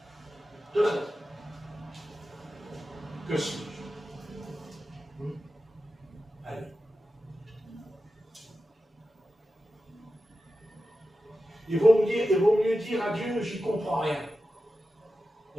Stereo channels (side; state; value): both; normal; correlation 0.92